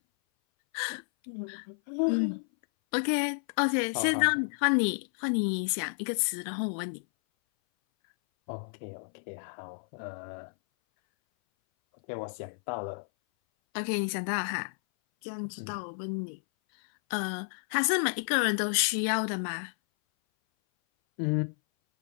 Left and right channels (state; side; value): silent; right; 57 dB below the other